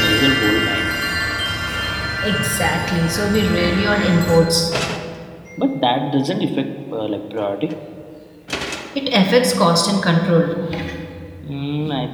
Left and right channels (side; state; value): both; identical; correlation 1.00